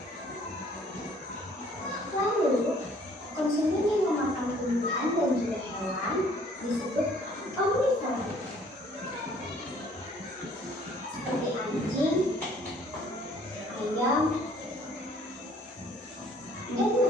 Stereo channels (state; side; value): normal; both; correlation 0.58